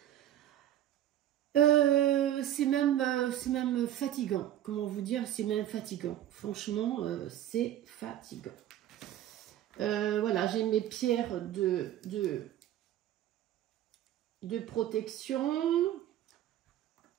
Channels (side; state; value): left; quieter; 12.1 dB